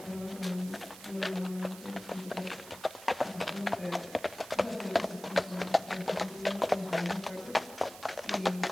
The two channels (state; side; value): noise; right; hiss, 16 dB below the sound